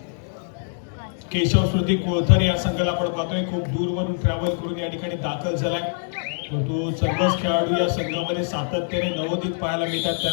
केशव श्रुती कोळथर या संघाला आपण पाहतोय खूप दूरवरून ट्रॅव्हल करून या ठिकाणी दाखल झालाय. परंतु सर्वच खेळाडू या संघामध्ये सातत्याने नवोदित पाहायला मिळतात,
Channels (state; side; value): silent; right; digital silence